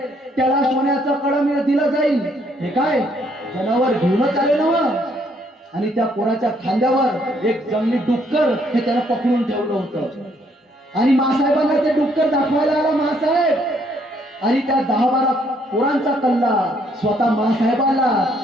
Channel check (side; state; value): both; normal; correlation 0.68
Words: त्याला सोन्याचं कळम दिलं जाईल. हे काय जनावर घेऊनच आले ना. आणि त्या पोराच्या खांद्यावर एक जंगली डुक्कर हे त्याला पकडून ठेवलं होतं. आणि मासाहेबांना ते डुक्कर दाखवायला आला मासाहेब. आणि त्या 10-12 पोरांचा कल्ला स्वतः मासाहेबाला